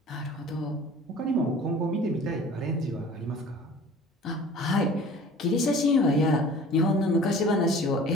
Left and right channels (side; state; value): both; normal; correlation 0.45